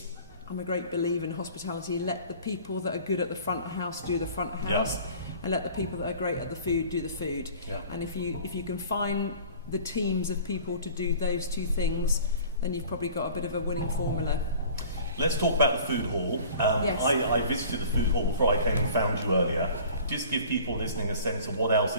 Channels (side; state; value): both; inverted; correlation -0.46